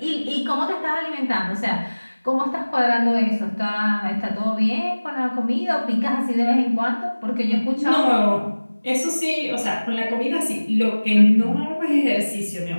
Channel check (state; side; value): inverted; both; correlation -1.00